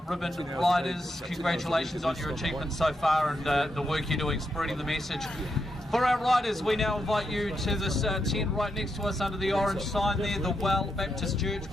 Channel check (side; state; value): both; normal; correlation 0.83